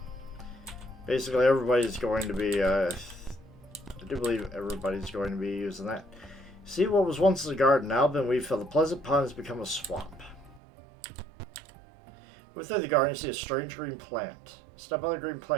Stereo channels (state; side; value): drops out; left; at 10.6 s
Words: Basically, everybody's going to be, I do believe everybody's going to be using that. See, what was once a garden, now been weed filled. The pleasant pond has become a swamp. Within the garden, you see a strange green plant. Step on the green